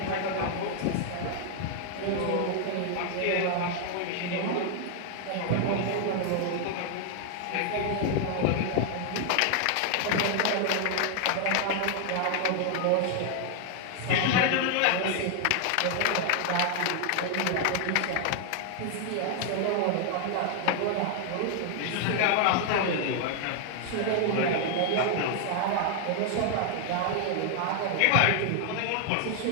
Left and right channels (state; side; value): different; both; correlation 0.00